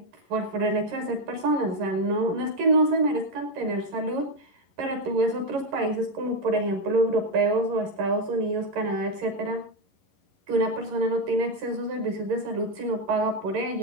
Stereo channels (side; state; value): left; late; 11 ms